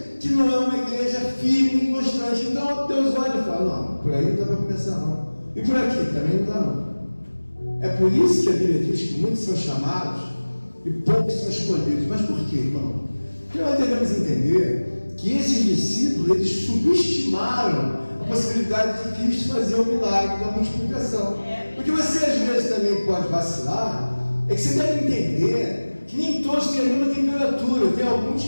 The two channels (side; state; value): both; inverted; correlation -1.00